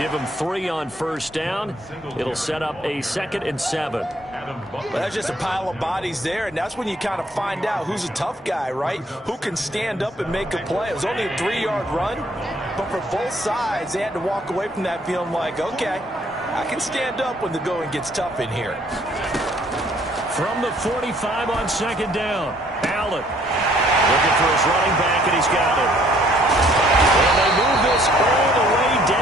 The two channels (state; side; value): normal; both; correlation 0.62